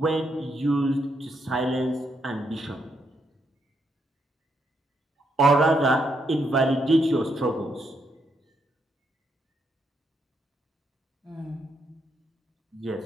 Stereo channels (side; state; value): both; normal; correlation 0.78